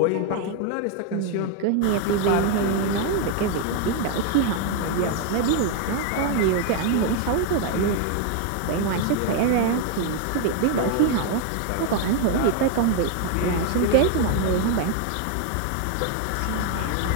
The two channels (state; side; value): different; both; correlation 0.01